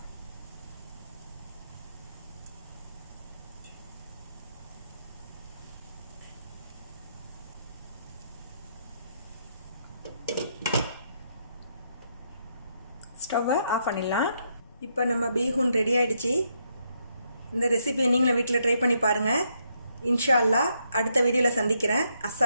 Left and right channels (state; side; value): inverted; both; correlation -0.76